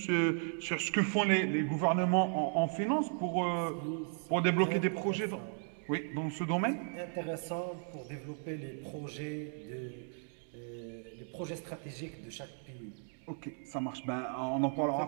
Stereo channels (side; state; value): left; silent; 54 dB below the other